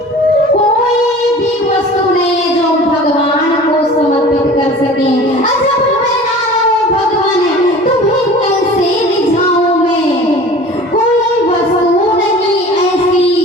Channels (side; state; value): both; normal; correlation 0.42